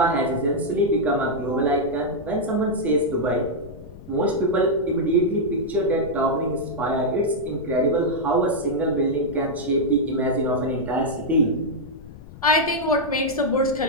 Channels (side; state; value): left; noise; rumble, 17 dB below the sound